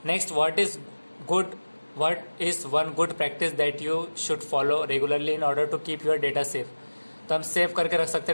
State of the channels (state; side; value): inverted; both; correlation -1.00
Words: Next, what is one good practice that you should follow regularly in order to keep your data safe. तो हम सेव करके रख सकते